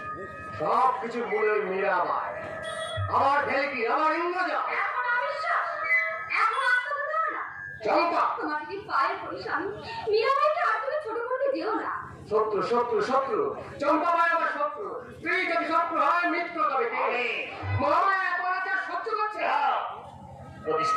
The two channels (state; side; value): identical; both; correlation 1.00